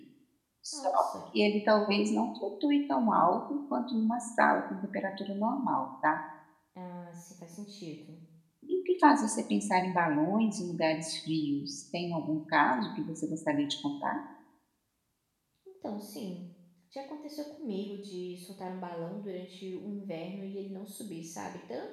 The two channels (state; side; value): identical; both; correlation 1.00